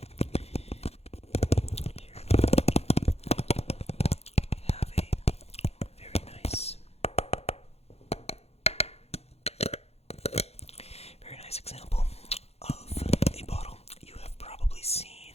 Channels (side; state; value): right; late; 0.30 ms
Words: here we have a very nice example of a bottle. You have probably seen